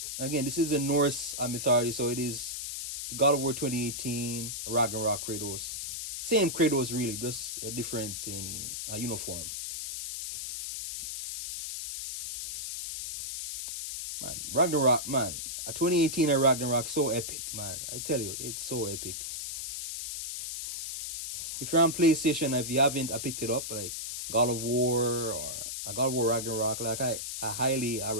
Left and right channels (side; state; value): left; noise; hiss, 5 dB below the sound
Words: Again, this is a Norse mythology, so it is God of War 2018, Ragnarok Kratos. Same Kratos, really, just a different in uniform. Man, Ragnarok, man. 2018 and Ragnarok, so epic, man. I tell you, it's so epic. If you're on PlayStation, if you haven't picked it up, like God of War or God of War Ragnarok, like I highly